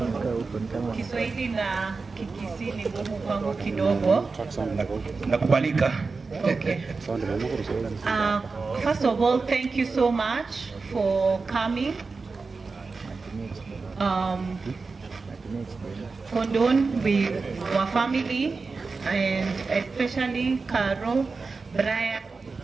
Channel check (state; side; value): quieter; left; 4.3 dB